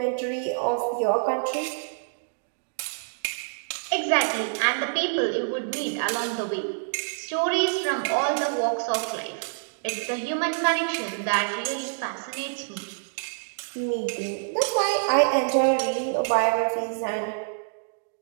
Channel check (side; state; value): left; silent; digital silence